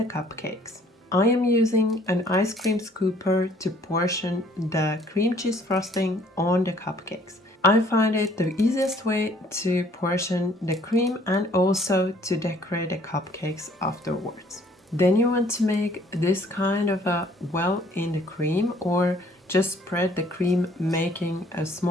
cupcakes. I am using an ice cream scooper to portion the cream cheese frosting on the cupcakes. I find it the easiest way to portion the cream and also to decorate the cupcakes afterwards. Then you want to make this kind of a well in the cream, or just spread the cream making a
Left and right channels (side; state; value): both; normal; correlation 0.59